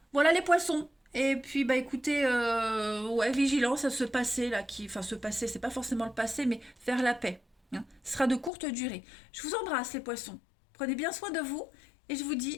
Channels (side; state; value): right; drops out; at 8.5 s